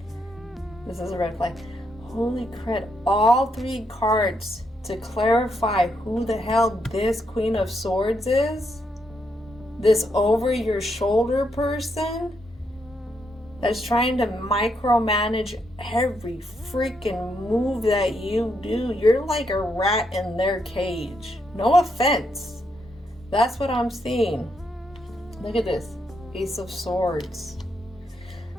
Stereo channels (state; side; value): normal; both; correlation 0.78